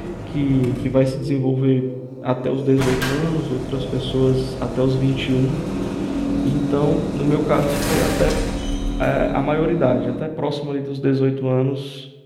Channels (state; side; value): identical; both; correlation 1.00